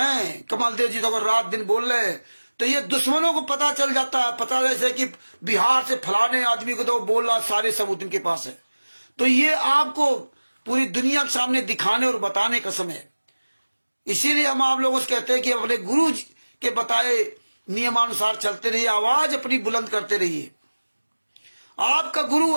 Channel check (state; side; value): inverted; both; correlation -1.00